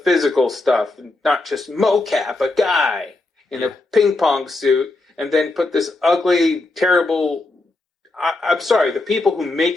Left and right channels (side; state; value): right; quieter; 3.0 dB